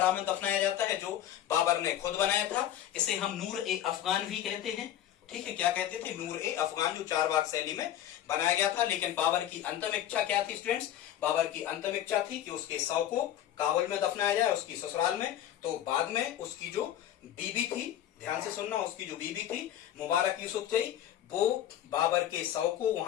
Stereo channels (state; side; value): quieter; right; 11.5 dB